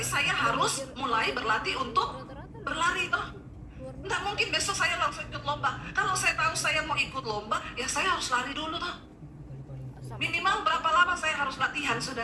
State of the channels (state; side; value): identical; both; correlation 1.00